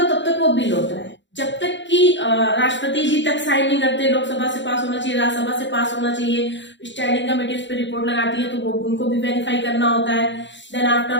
है तब तक वो बिल होता है, जब तक कि राष्ट्रपति जी तक साइन नहीं करते, लोकसभा से पास होना चाहिए, राज्यसभा से पास होना चाहिए, स्टैंडिंग कमेटी उस पर रिपोर्ट लगाती है तो वो उनको भी वेरीफाई करना होता है, देन आफ्टर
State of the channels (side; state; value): right; late; 0.53 ms